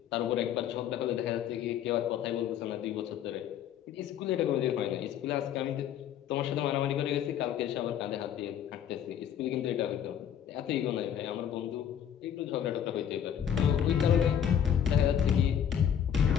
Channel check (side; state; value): right; quieter; 9.3 dB